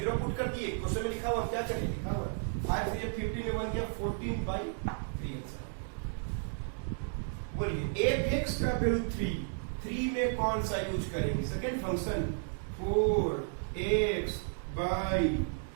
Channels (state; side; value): silent; left; digital silence